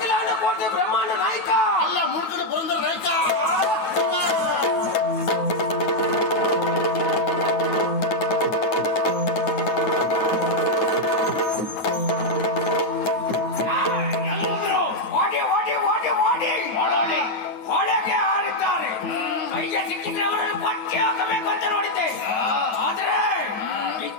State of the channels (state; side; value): late; right; 9.2 ms